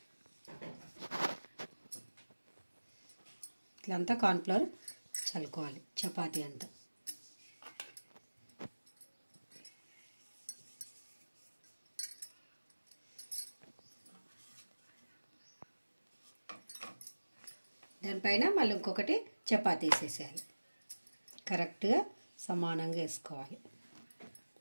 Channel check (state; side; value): inverted; both; correlation -1.00